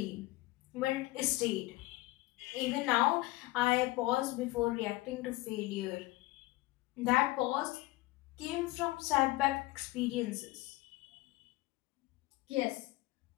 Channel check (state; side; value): quieter; right; 19.5 dB